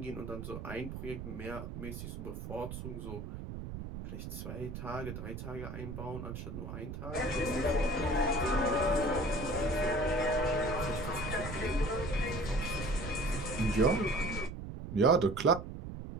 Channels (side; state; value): right; noise; rumble, 7 dB below the sound